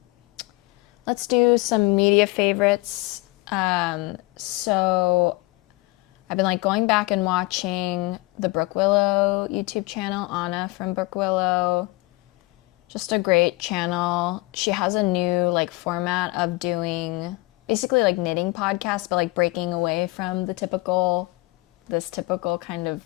some media favorites. So I've been like going back and watching the Brook Willow YouTube channel, Anna from Brook Willow. Just a great channel. She has a new like format of doing basically like knitting podcasts, but like breaking away from this typical kind of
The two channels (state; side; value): quieter; right; 22.2 dB